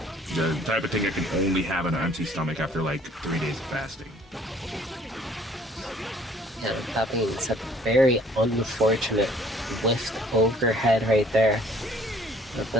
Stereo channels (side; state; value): both; normal; correlation 0.57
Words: The type of thing I can only have on an empty stomach after like 3 days of fasting. Yeah, that being said, very unfortunate lift overhead right there. At